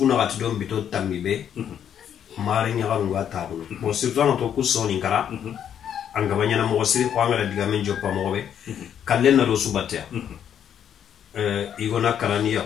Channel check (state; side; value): quieter; right; 9.1 dB